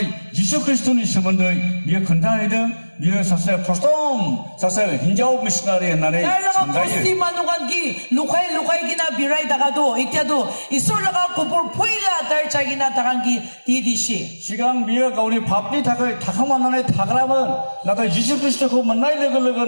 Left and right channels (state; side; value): inverted; both; correlation -1.00